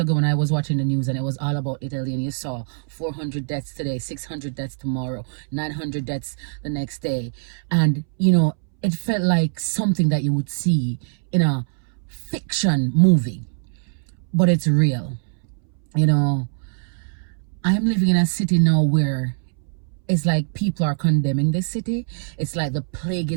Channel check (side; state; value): left; silent; 64 dB below the other